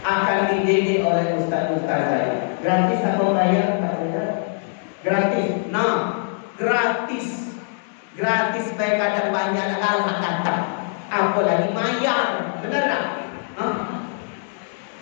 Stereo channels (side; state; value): right; silent; 64 dB below the other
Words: Akan dididik oleh ustaz-ustaz saya. Gratis atau bayar? Gratis. Nah, gratis. Gratis baik ada banyak hal kata. Apalagi bayar. Benar tak?